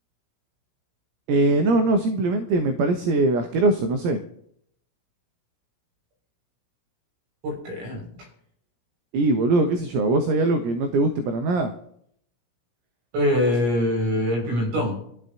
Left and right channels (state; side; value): late; left; 17 ms